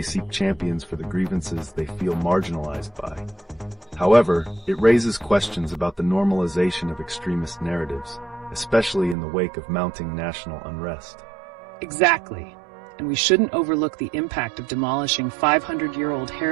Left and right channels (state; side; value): drops out; left; at 9.2 s